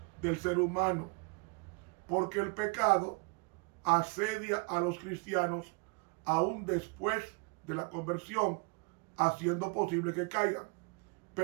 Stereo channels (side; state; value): left; quieter; 31.5 dB